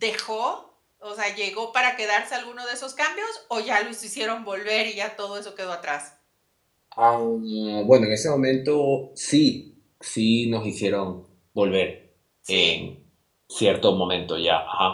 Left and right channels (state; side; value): identical; both; correlation 1.00